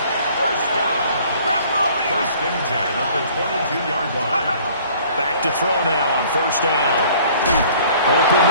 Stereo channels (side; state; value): both; inverted; correlation -0.54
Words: first down. 1st and 10 at the 22-yard line. Back to throw now on first down. Open